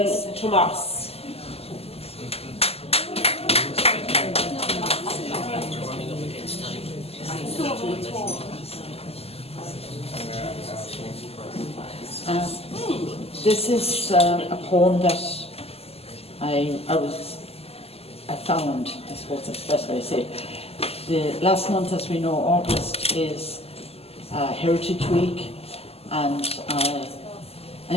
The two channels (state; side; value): late; right; 0.29 ms